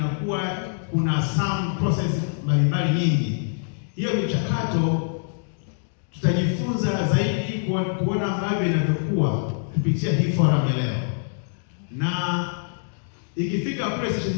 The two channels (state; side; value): silent; right; digital silence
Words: kuna some process mbalimbali nyingi. Hiyo michakato tutajifunza zaidi kuona ambavyo inavyokuwa kupitia hii forum ya leo, na ikifika kule station